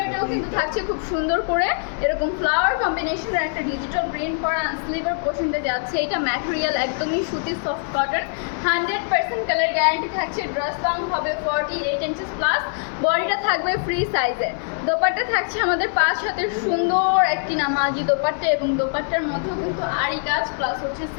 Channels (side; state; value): right; silent; digital silence